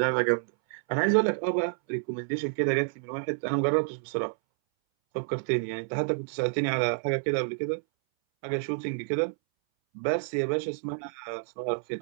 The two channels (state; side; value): silent; left; 59 dB below the other